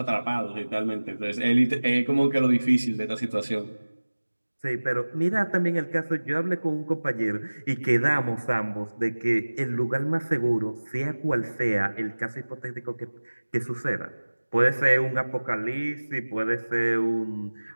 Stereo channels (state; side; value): inverted; both; correlation -1.00